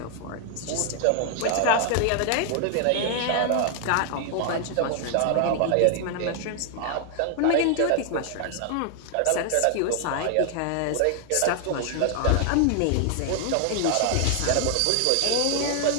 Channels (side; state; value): both; different; correlation 0.00